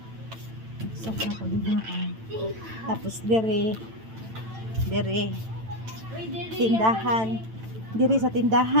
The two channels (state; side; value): late; left; 9.0 ms